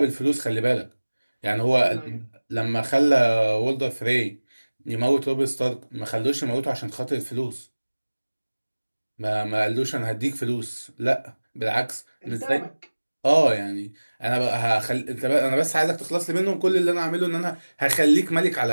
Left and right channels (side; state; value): both; inverted; correlation -1.00